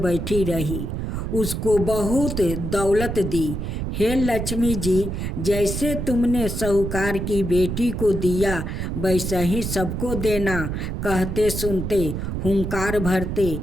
रही। उसको बहुत दौलत दी। हे लक्ष्मी जी, जैसे तुमने साहूकार की बेटी को दिया वैसा ही सबको देना। कहते सुनते हुंकार भरते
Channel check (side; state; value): right; noise; rumble, 4 dB below the sound